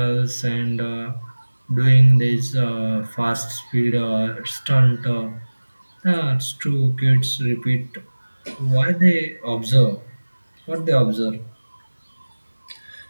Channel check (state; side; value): inverted; both; correlation -1.00